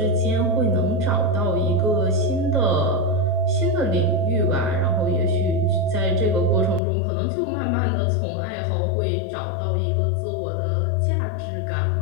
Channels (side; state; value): right; drops out; at 6.8 s